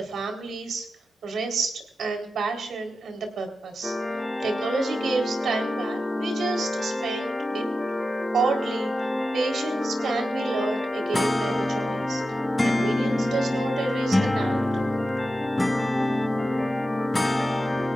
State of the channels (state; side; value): normal; both; correlation 0.91